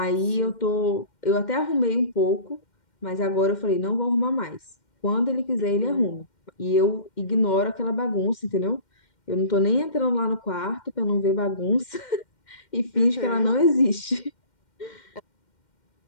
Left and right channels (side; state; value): right; late; 2.1 ms